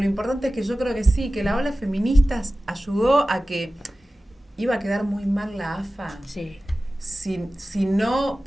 importante es que yo creo que sí, que la ola feminista ayudó a que iba a quedar muy mal la AFA. Sí. Si no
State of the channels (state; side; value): normal; both; correlation 0.96